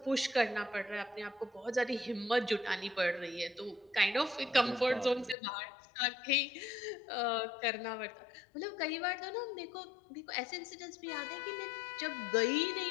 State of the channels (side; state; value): right; drops out; at 5.4 s